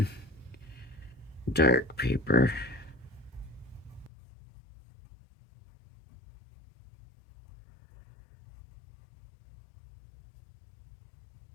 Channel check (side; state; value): right; drops out; at 4.1 s